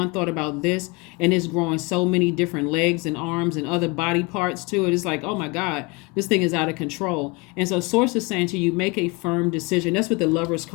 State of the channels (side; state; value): right; quieter; 27.2 dB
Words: thought about this, and it's growing so many different legs and arms and other body parts to it. It's like, oh my God, this thing is out of control. And so Source is saying to you, make a firm decision. That's what the Lovers